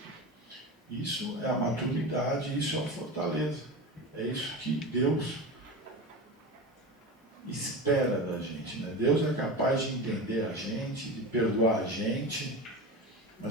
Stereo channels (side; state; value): both; normal; correlation 0.26